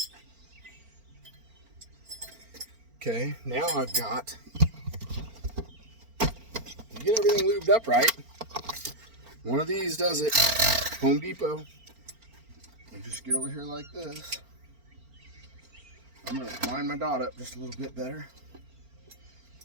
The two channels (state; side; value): late; left; 4.4 ms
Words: Okay, now I've got, you get everything lubed up right. One of these does it. Home Depot. You just get over here like this. I'm going to line my dot up just a little bit better.